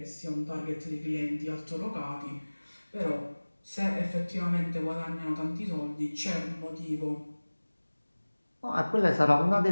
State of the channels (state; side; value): inverted; both; correlation -1.00